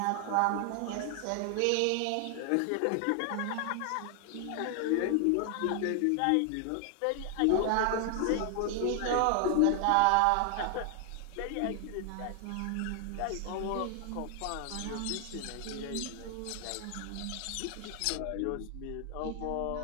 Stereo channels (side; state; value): both; different; correlation 0.00